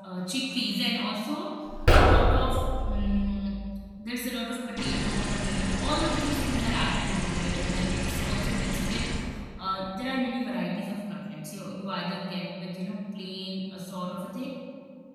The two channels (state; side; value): identical; both; correlation 1.00